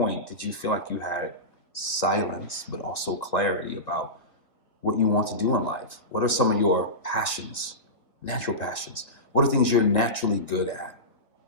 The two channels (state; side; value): late; right; 2.1 ms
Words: did you feel like you had silence, but also clarity about what you want to do in life? What are some of your passions, natural passions? What are things you're naturally good at?